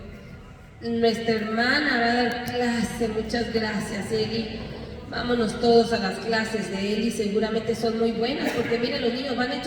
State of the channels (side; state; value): both; identical; correlation 1.00